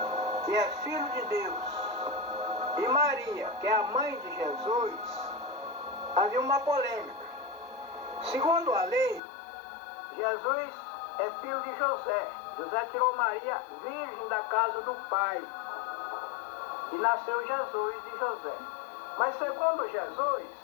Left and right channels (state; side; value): drops out; right; at 9.2 s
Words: que é filho de Deus, e Maria, que é a mãe de Jesus, havia uma polêmica. Segundo a lei, Jesus é filho de José. José tirou Maria virgem da casa do pai. E nasceu Jesus de José. Mas segundo Jesus,